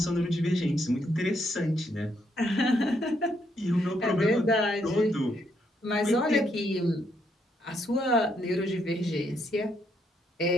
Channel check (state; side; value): normal; both; correlation 0.75